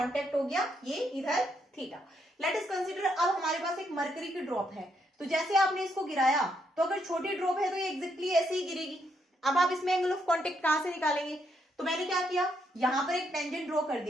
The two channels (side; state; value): both; normal; correlation 0.76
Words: हो गया, ये इधर थीटा। लेट अस कंसीडर, अब हमारे पास एक मरकरी की ड्रॉप है, तो जैसे आपने इसको गिराया तो अगर छोटी ड्रॉप है तो ये एग्जैक्टली ऐसे ही गिरेगी। अब आप इसमें एंगल ऑफ कांटेक्ट कहां से निकालेंगे, तो मैंने क्या किया, यहां पर एक टेंजेंट ड्रॉ कर